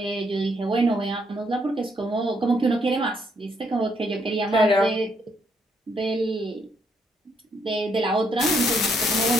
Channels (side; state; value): both; normal; correlation 0.73